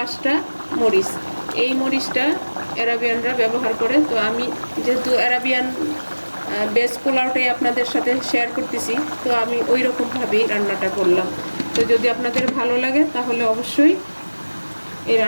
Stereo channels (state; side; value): inverted; both; correlation -1.00